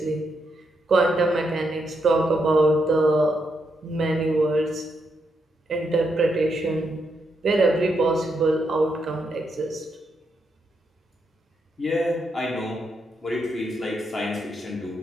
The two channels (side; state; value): both; normal; correlation 0.81